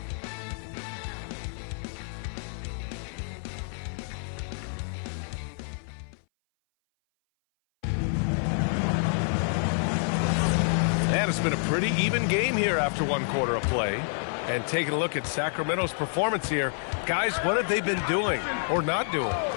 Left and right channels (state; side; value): silent; right; 58 dB below the other